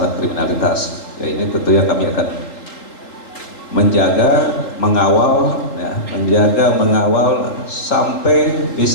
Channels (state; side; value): late; right; 4.0 ms